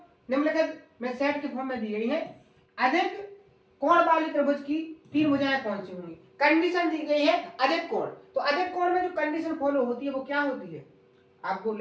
निम्नलिखित में सेट के फॉर्म में दी गई है। अधिक कोण वाली त्रिभुज की 3 भुजाएं कौन सी होंगी। कंडीशन दी गई है अधिक कोण, तो अधिक कोण में जो कंडीशन फॉलो होती है वो क्या होती है, आपको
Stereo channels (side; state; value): both; identical; correlation 1.00